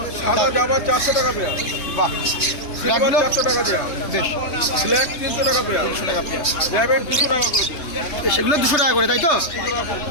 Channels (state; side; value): late; right; 3.3 ms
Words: সাদা জাবা 400 টাকা পেয়ার। বাহ, সিলভার ব্ল্যাকগুলো 400 টাকা পেয়ার। বেশ, ব্ল্যাক 300 টাকা পেয়ার। 300 টাকা পেয়ার। ল্যাবের 200 টাকা করে। সেগুলো 200 টাকা করে, তাই তো?